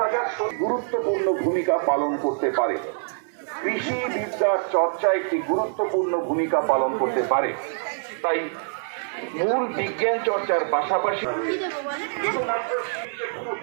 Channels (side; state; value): left; silent; digital silence